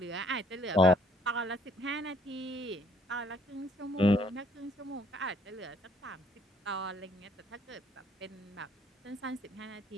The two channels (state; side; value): normal; both; correlation 0.63